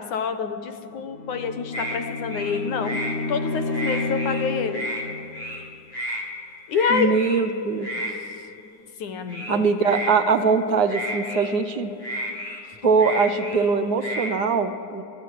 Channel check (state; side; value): late; right; 9.7 ms